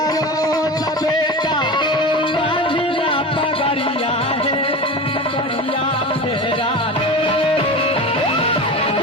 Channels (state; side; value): normal; both; correlation 0.29